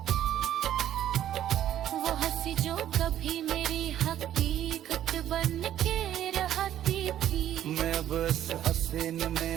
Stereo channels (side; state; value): left; quieter; 11.5 dB